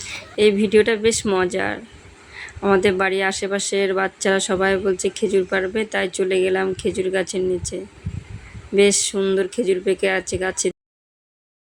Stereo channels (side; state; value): both; identical; correlation 1.00